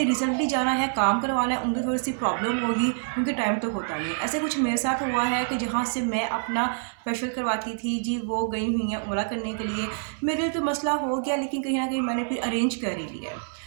रिसेंटली जाना है काम करवाना है उनकी थोड़ी सी प्रॉब्लम होगी क्योंकि टाइम तो होता नहीं है। ऐसे कुछ मेरे साथ हुआ है कि जहाँ से मैं अपना फेशियल करवाती थी जी, वो गई हुई हैं उम्रा करने के लिए। मेरे लिए तो मसला हो गया, लेकिन कहीं ना कहीं मैंने फिर अरेंज कर ही लिया।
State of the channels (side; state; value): left; silent; digital silence